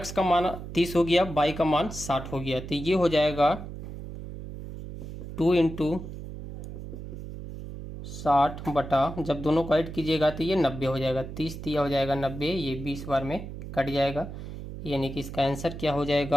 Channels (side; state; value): right; noise; hum, 10 dB below the sound